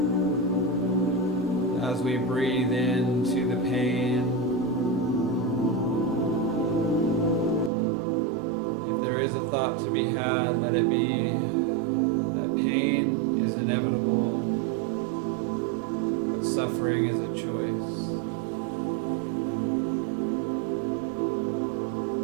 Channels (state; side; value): drops out; left; at 7.7 s